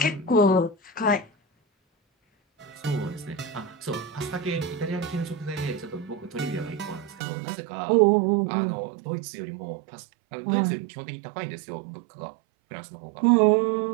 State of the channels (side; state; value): left; drops out; at 7.2 s